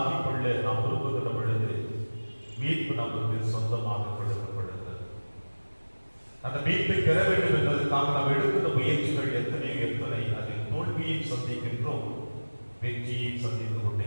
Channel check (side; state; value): both; inverted; correlation -1.00